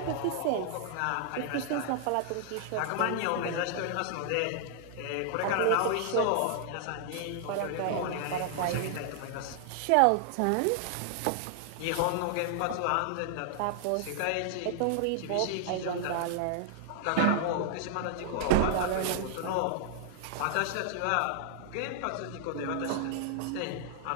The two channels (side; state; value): both; different; correlation -0.01